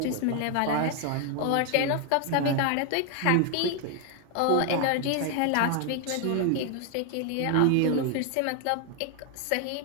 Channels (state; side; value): different; both; correlation 0.00